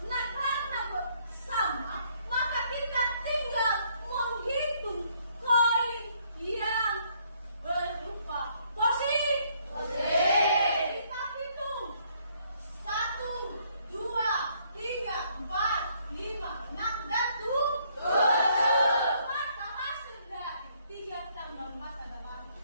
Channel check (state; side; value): inverted; both; correlation -0.68